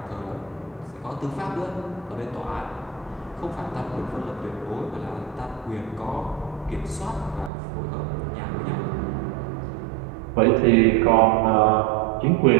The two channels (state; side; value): drops out; left; at 7.5 s